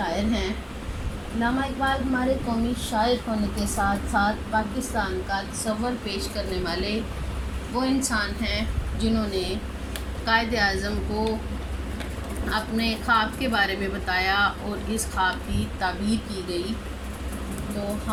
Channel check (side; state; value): both; identical; correlation 1.00